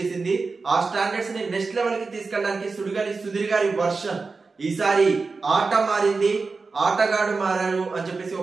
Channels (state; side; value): quieter; left; 4.2 dB